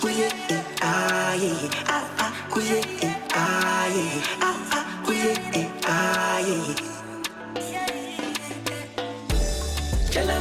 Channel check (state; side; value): identical; both; correlation 1.00